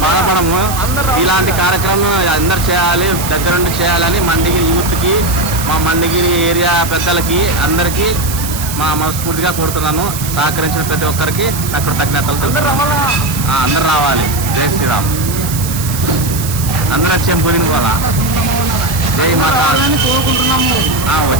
బాధపడము. ఇలాంటి కార్యక్రమం అందరు చేయాలి, దగ్గరుండి చేయాలని మండిగిరి యూత్కి, మా మండిగిరి ఏరియా పెద్దలకి అందరికీ మనస్ఫూర్తిగా కోరుతున్నాను. సహకరించిన ప్రతి ఒక్కరికి కృతజ్ఞతలు. అందరు రావాలి. జై శ్రీరామ్. అందరూ వచ్చేం పోయింది పోలా. జై మాతా.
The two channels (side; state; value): right; noise; hiss, 8 dB below the sound